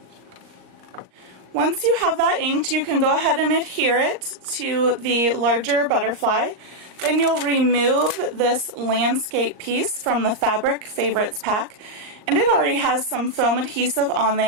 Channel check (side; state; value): left; late; 38 ms